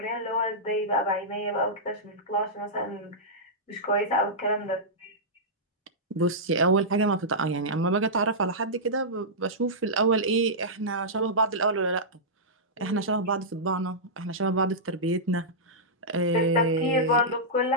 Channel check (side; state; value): both; normal; correlation -0.13